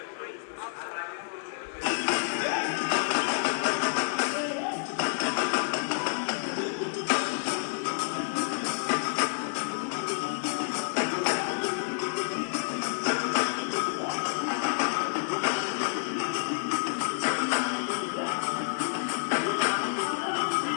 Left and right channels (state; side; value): silent; right; digital silence